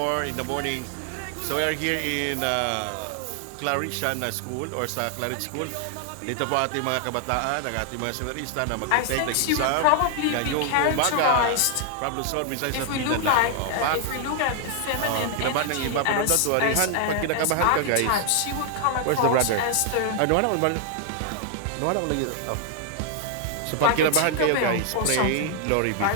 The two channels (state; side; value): different; both; correlation 0.00